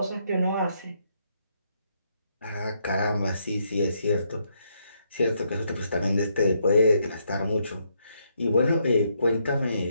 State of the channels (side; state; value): both; inverted; correlation -0.75